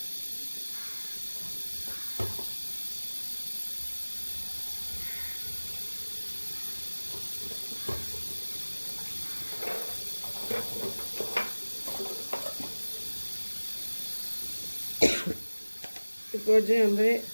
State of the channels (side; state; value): both; inverted; correlation -1.00